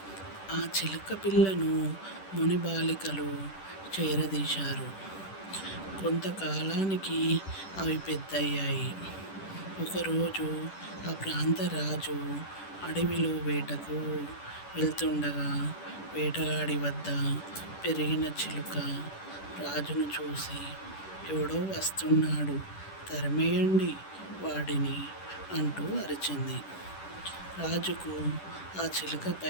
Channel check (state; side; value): late; right; 10 ms